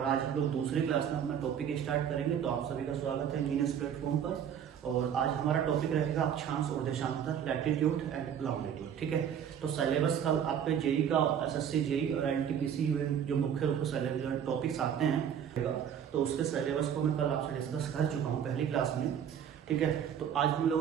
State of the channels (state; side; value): quieter; left; 8.7 dB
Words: आज हम लोग दूसरी क्लास में अपना टॉपिक स्टार्ट करेंगे। तो आप सभी का स्वागत है इंजीनियर्स प्लेटफॉर्म पर। और आज हमारा टॉपिक रहेगा अक्षांश और देशांतर, लैटिट्यूड एंड लॉन्गिट्यूड। ठीक है, तो सिलेबस का आपके जेई का, एसएससी जेई और एनटीपीसी जो मुख्य रूप से टॉपिक्स आते हैं, तो उसके सिलेबस को मैं कल आपसे डिस्कस कर चुका हूँ पहली क्लास में। ठीक है, तो आज हम